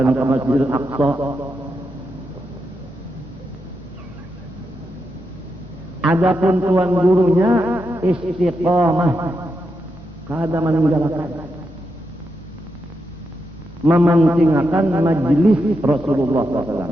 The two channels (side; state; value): both; normal; correlation 0.85